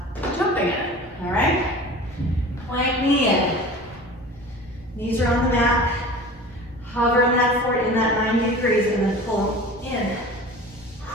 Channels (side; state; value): both; normal; correlation 0.39